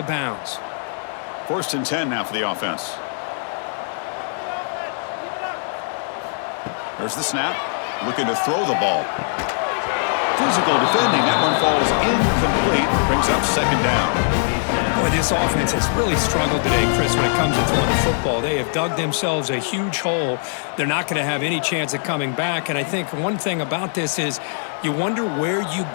bounds. 1st and 10 now for the offense. There's the snap. Looking to throw the ball. Physical defending. That one falls incomplete. Brings up second down. Boy, this offense has really struggled today, Chris, when it comes to throwing the football. They have dug themselves a huge hole. They're not going to have any chance of coming back. And I think one thing about this is you wonder where you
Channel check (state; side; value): silent; right; digital silence